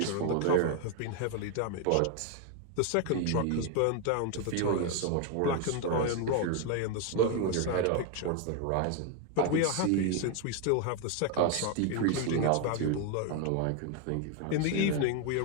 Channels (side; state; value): both; different; correlation 0.01